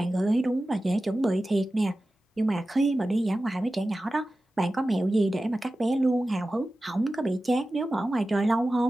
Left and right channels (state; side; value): normal; both; correlation 0.95